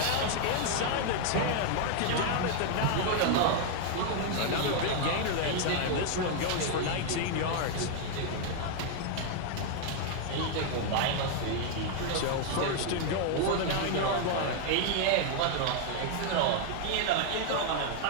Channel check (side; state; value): both; different; correlation 0.00